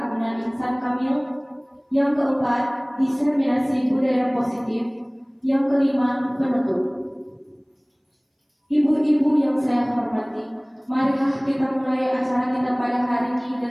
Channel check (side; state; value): both; identical; correlation 1.00